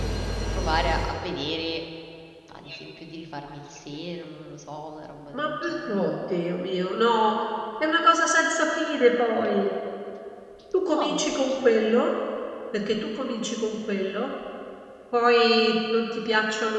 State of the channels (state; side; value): identical; both; correlation 1.00